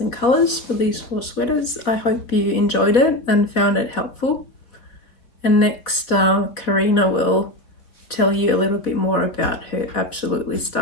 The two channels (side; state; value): right; late; 4.2 ms